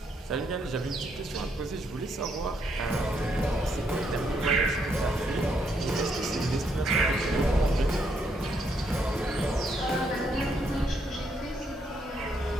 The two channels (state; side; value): normal; both; correlation 0.75